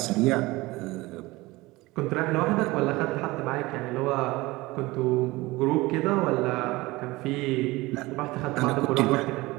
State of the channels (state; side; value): quieter; left; 20.8 dB